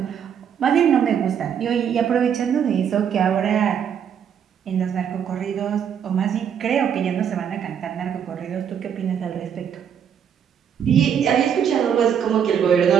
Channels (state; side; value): quieter; left; 8.2 dB